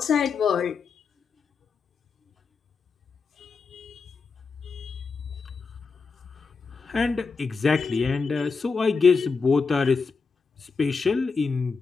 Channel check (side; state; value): right; quieter; 4.8 dB